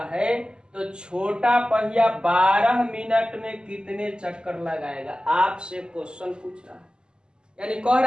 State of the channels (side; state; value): left; late; 0.047 ms